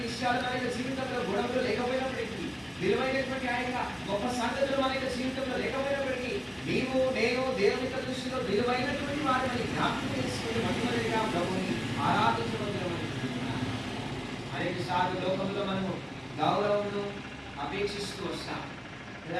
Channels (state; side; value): identical; both; correlation 1.00